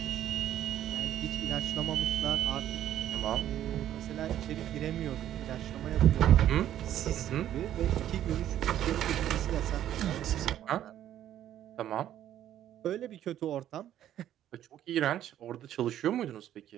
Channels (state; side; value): quieter; left; 11.6 dB